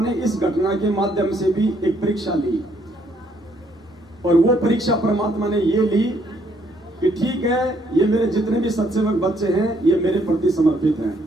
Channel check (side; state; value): both; normal; correlation 0.69